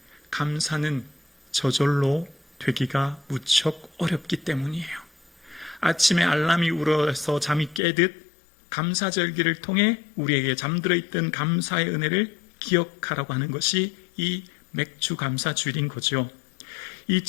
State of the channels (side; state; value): right; drops out; at 7.8 s